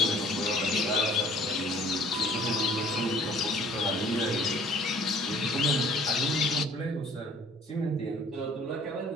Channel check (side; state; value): both; normal; correlation 0.54